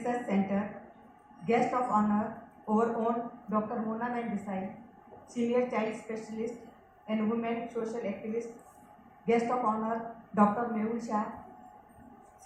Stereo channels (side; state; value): both; identical; correlation 1.00